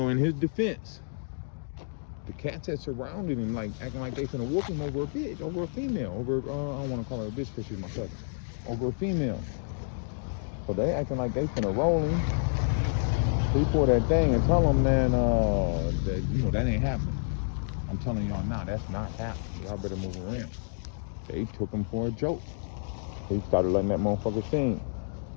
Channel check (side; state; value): right; silent; digital silence